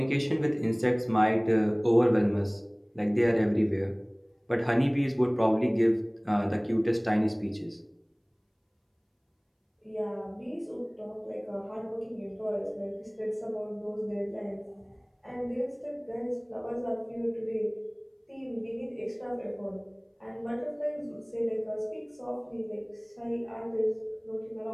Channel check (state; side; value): identical; both; correlation 1.00